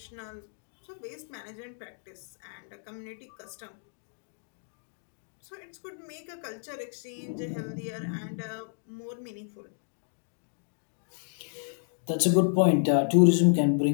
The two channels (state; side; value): silent; right; digital silence